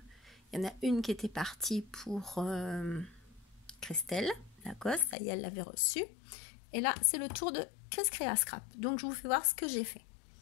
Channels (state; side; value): drops out; right; at 5.2 s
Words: y en a une qui était partie pour Christelle Lacoste, ça y est, elle l'avait reçue. Et là c'est le tour de Chris Crea Scrap. Donc je vous fais voir ce que j'ai fait.